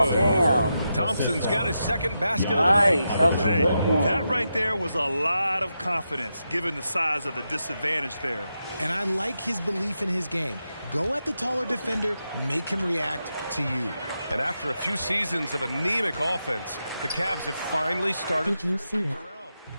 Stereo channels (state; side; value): inverted; both; correlation -0.87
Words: is good. Damn. Thompson's got his second basket of the Nice. night. That was a good one. That right there was a lot of confidence, given the size of the disadvantage there. And I like his belief in his game. Go at the taller defender, make him react to you. And after a few seasons of anemic offense, the Cavs have finally started. Did you see it?